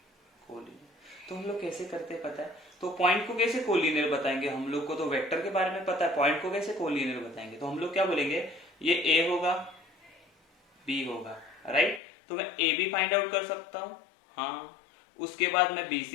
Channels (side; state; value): right; drops out; at 12.0 s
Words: कोलिनियर। तो हम लोग कैसे करते हैं पता है, तो पॉइंट को कैसे कोलिनियर बताएंगे, हम लोग को तो वेक्टर के बारे में पता है, पॉइंट को कैसे कोलिनियर बताएंगे। तो हम लोग क्या बोलेंगे, ये A होगा, B होगा, राइट। तो मैं AB फाइंड आउट कर सकता हूँ, हाँ, उसके बाद मैं